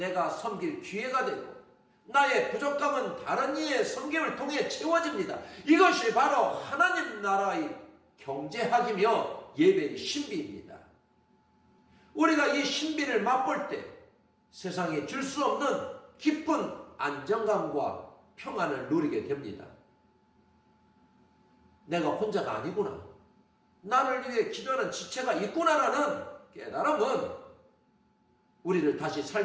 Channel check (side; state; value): both; identical; correlation 1.00